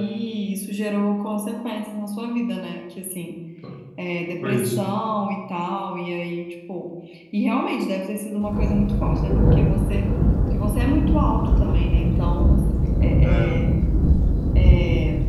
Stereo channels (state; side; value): identical; both; correlation 1.00